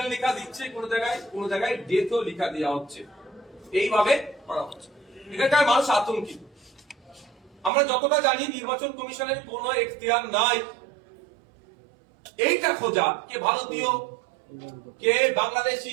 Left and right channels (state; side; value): drops out; left; at 7.7 s